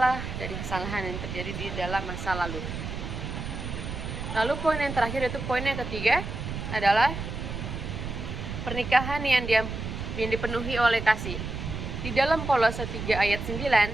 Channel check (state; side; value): noise; right; rumble, 6 dB below the sound